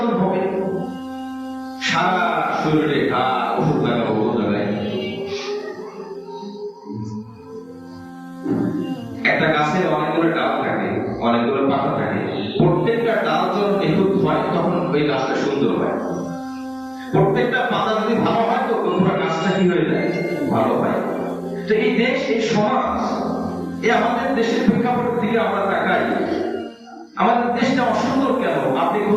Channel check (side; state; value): both; identical; correlation 1.00